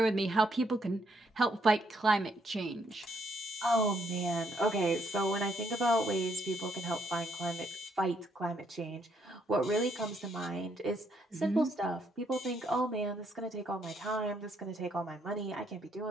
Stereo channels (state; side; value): normal; both; correlation 0.73